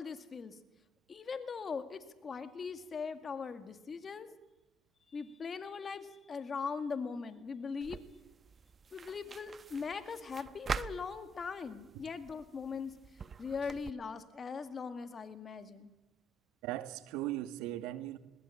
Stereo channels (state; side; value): normal; both; correlation 0.73